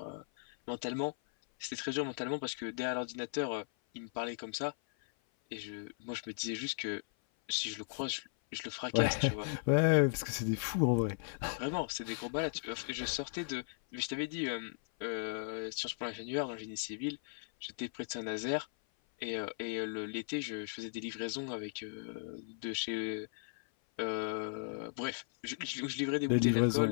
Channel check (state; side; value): silent; right; 53 dB below the other